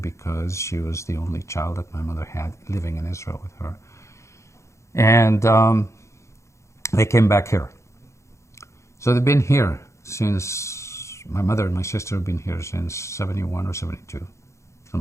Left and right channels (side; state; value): right; late; 0.14 ms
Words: she was the only child that my mother had living in Israel with her. And they came back here. So they've been here since, my mother and my sister have been here since 71 or 72,